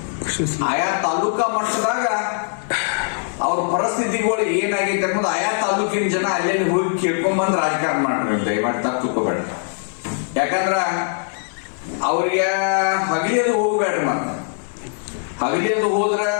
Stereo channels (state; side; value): silent; right; 65 dB below the other